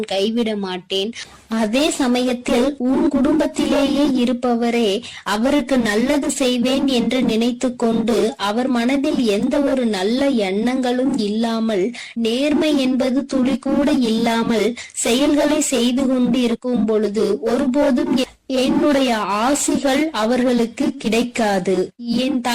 கைவிட மாட்டேன். அதே சமயத்தில் உன் குடும்பத்திலேயே இருப்பவரே அவருக்கு நல்லது செய்வேன் என்று நினைத்து கொண்டு அவர் மனதில் எந்த ஒரு நல்ல எண்ணங்களும் இல்லாமல், நேர்மை என்பது துளி கூட இல்லாமல் செயல்களை செய்து கொண்டு இருக்கும் பொழுது ஒருபோதும் என்னுடைய ஆசிகள் அவர்களுக்கு கிடைக்காது. என்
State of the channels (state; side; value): identical; both; correlation 1.00